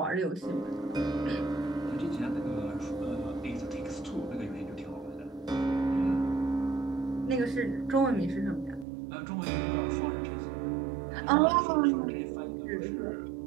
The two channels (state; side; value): drops out; left; at 8.8 s